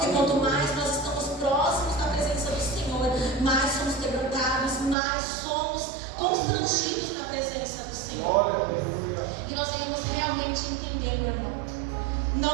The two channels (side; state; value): left; drops out; at 5.0 s